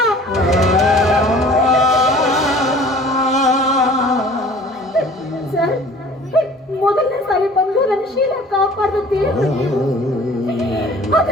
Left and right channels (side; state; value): both; normal; correlation 0.48